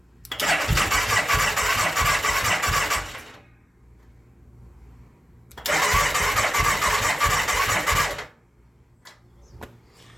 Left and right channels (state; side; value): normal; both; correlation 0.95